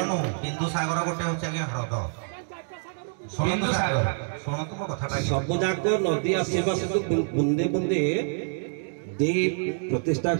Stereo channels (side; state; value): left; silent; digital silence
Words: नु बिंदु सागर गोटे होचे आज्ञा ह्रद। बिंदु सागर शुणतु मो कथाटा सब जाक नदी आसीबा से बुंदे बुंदे दे प्रतिष्ठा